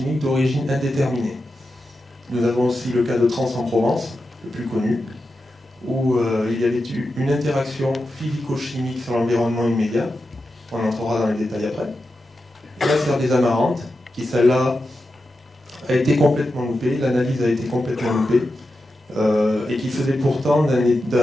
d'origine indéterminée. Nous avons aussi le cas de Trans en Provence, le plus connu, où il y avait eu une interaction physico-chimique sur l'environnement immédiat. On entrera dans les détails après. La serre des Amarantes, qui celle-là a été complètement loupée, l'analyse a été complètement loupée, et qui faisait pourtant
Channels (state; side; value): normal; both; correlation 0.90